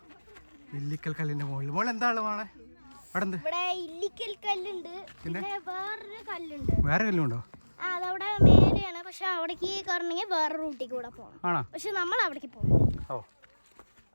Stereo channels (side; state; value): both; inverted; correlation -1.00